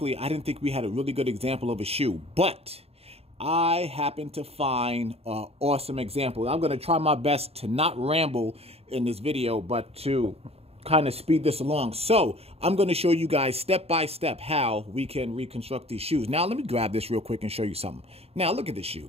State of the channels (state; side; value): late; left; 0.29 ms